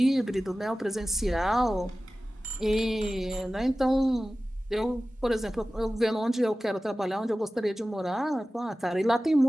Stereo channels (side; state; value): both; normal; correlation 0.96